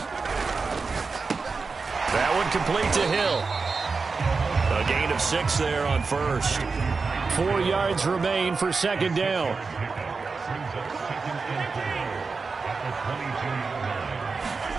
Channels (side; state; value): left; quieter; 4.5 dB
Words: That one complete to Hill. A gain of 6 there on 1st. 4 yards remain for 2nd down.